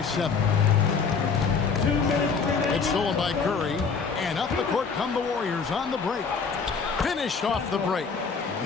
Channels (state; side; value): quieter; right; 5.4 dB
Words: 7. It's stolen by Curry. And up the court come the Warriors on the break. Finished off the break.